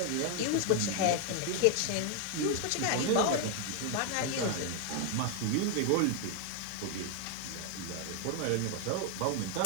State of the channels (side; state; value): both; different; correlation 0.00